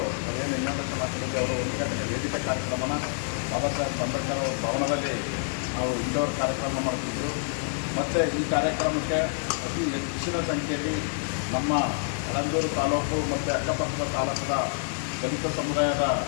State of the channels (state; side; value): silent; right; digital silence